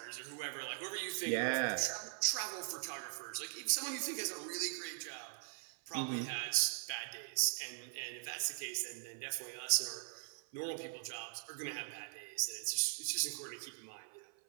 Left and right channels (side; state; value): left; silent; 50 dB below the other